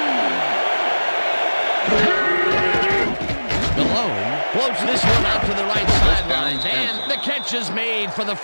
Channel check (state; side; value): inverted; both; correlation -1.00